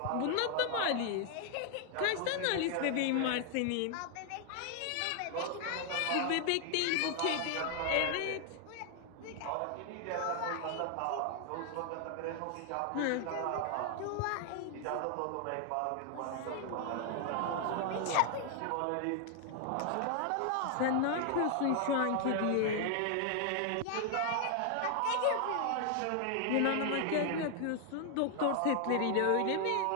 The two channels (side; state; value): both; different; correlation 0.00